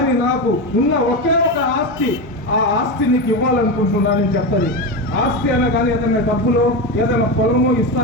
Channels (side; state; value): both; normal; correlation 0.17